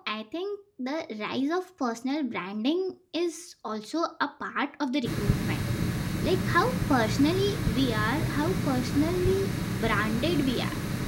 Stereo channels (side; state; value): both; identical; correlation 1.00